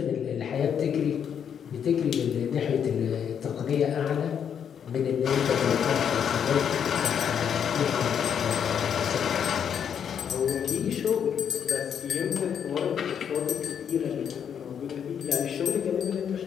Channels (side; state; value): right; quieter; 8.1 dB